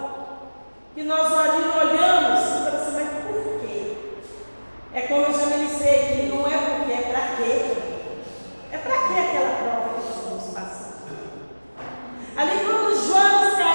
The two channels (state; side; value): inverted; both; correlation -1.00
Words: que nós olhamos e falamos assim, mas por quê? É como eu já ministrei aqui, não é porque, é para quê? É para quê aquela prova que nós estamos passando? Ali quando Jonas